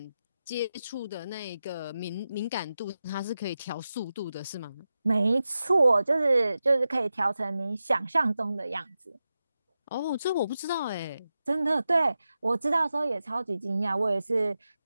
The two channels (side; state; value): both; inverted; correlation -0.91